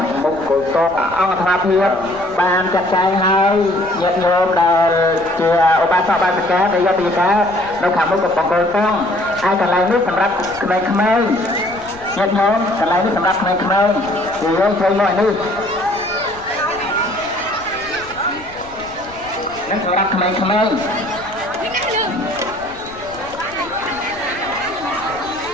មុខគោលតអង្គធម៌ភាពបានចាត់ចែងហើយញាតិញោមដែលជាឧបាសកឧបាសិកាដែលយកពីការនៅខាងមុខកំពង់គោលតង់ហើយកន្លែងនេះសម្រាប់ក្មេងៗញាតិញោមកន្លែងនេះសម្រាប់ក្មេងៗគឺយើងធ្វើមកនេះនេះសម្រាប់ក្មេងៗប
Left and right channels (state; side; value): noise; left; rumble, 21 dB below the sound